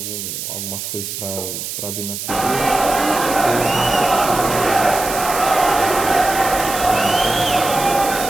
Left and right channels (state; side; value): noise; right; hiss, 7 dB below the sound